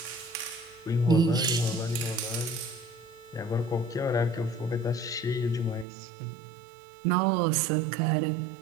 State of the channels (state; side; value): drops out; left; at 5.9 s